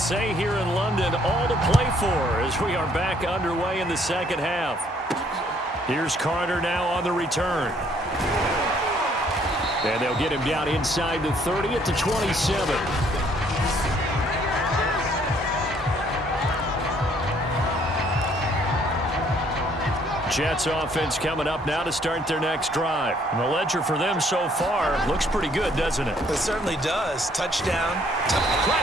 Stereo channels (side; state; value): both; normal; correlation 0.64